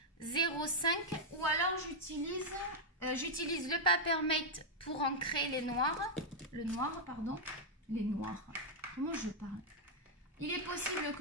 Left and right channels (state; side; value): normal; both; correlation -0.03